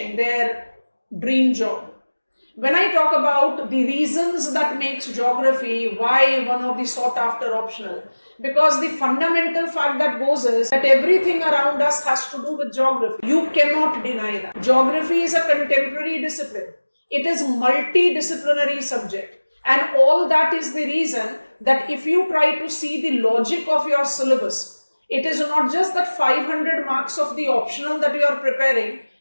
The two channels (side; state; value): both; inverted; correlation -1.00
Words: their dream job. When I talk about the reasons that makes geography, why one of the sought after optional, because the fundamental fact that goes is that everything around us has to do with geography. You cannot deny that. Geography is a contemporary discipline. It is multidisciplinary subject. And all that is the reason that if you try to see the logic of your syllabus, it is not just that 500 marks of the optional that you are preparing.